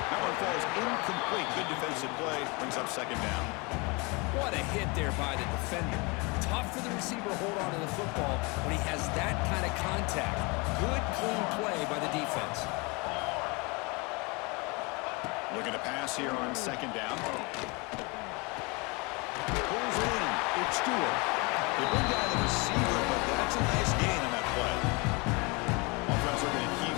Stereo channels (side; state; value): right; quieter; 28.4 dB